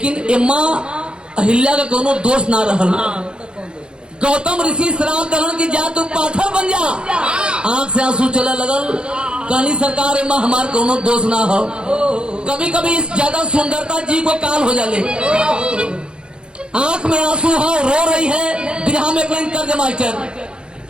एम्मा अहिल्या का कोनो दोष ना रहल। गौतम ऋषि श्राप दलन की जा तू पाथर बन जा आंख से आंसू चला लगल कहनी सरकार एम्मा हमार कोनो दोष ना हो कभी कभी इस ज्यादा सुंदरता जी को काल हो जाले आंख में आंसू हो रो रही है बिरहा में क्लाइन कर दे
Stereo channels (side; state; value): left; late; 0.051 ms